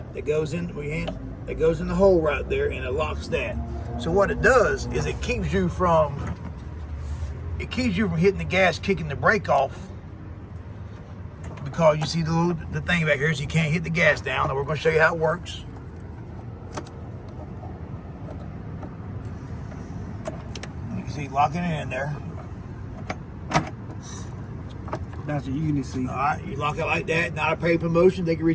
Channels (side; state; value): both; identical; correlation 1.00